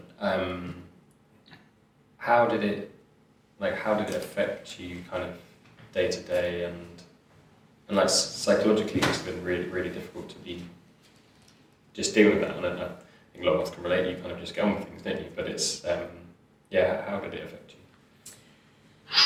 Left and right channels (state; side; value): identical; both; correlation 1.00